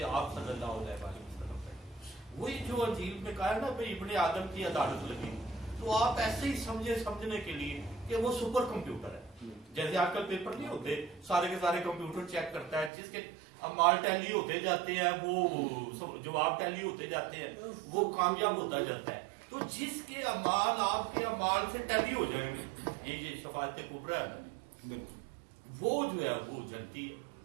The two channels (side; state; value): left; drops out; at 12.9 s